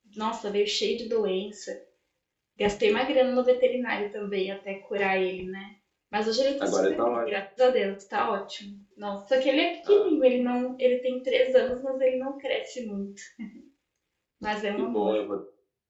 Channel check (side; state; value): both; identical; correlation 1.00